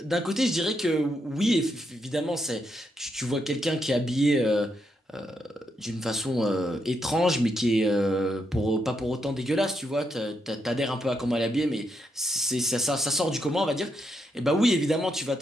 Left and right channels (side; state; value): both; normal; correlation 0.80